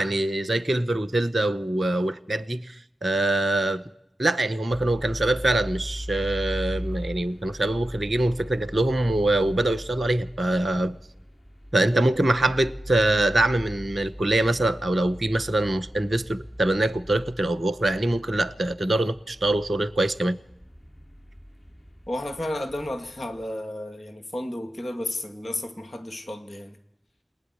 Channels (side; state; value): both; normal; correlation 0.92